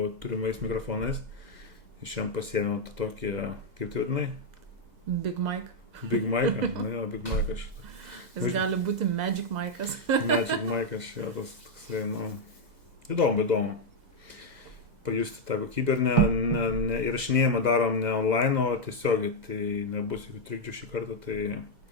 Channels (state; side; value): late; left; 2.0 ms